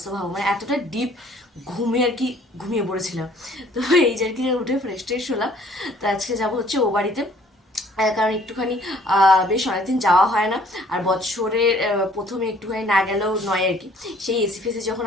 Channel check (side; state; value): both; normal; correlation 0.58